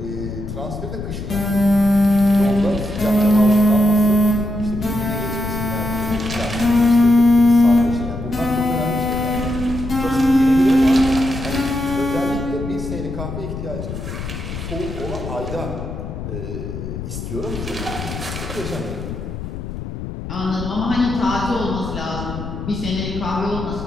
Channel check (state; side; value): noise; left; rumble, 8 dB below the sound